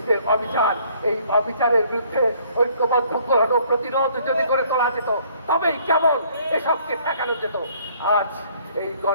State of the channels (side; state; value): both; inverted; correlation -0.61